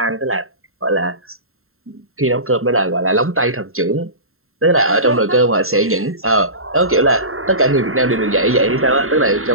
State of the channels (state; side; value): late; left; 0.62 ms